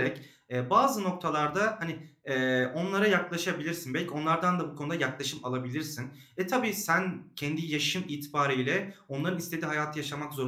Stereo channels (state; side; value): identical; both; correlation 1.00